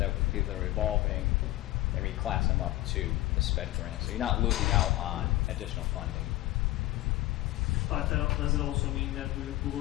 would be the revolving and reclass them up to the sped grant. So you're not losing out on additional funding. But does it also mean that we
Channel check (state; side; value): quieter; right; 17.5 dB